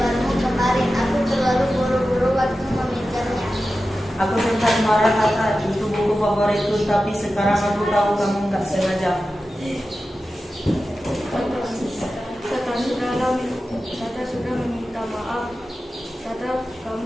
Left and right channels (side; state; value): both; normal; correlation 0.93